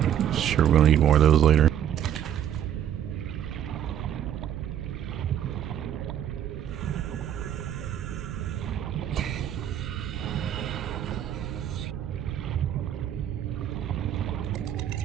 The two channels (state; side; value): quieter; left; 10.2 dB